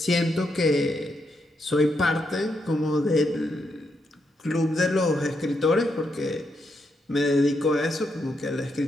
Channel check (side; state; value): both; normal; correlation 0.80